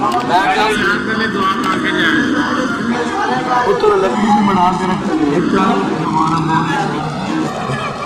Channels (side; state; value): both; identical; correlation 1.00